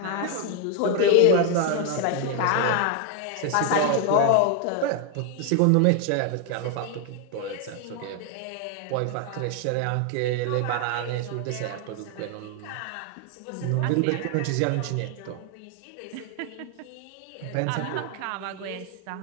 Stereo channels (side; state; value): both; different; correlation 0.01